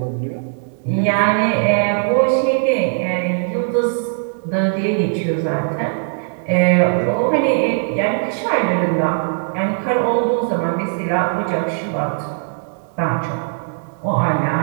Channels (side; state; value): left; silent; digital silence